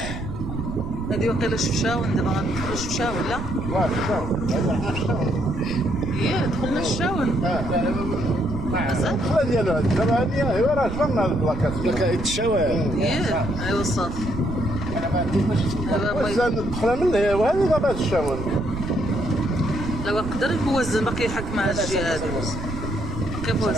هادي وقيلا شفشاون، دابا غندخلو شفشاون لا؟ هي دخلنا الشاون مازال؟ الدخله ديالو دابا هادي ايوا راه جبرنا هاد البلاكات بلاكات الشوارع. ايوا صافي. وزان الدخله من هي وهذه دابا الشاون. دابا يقدر يوزن باقي يحك مع الجهه هادي باقي يوزن.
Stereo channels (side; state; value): right; noise; rumble, 6 dB below the sound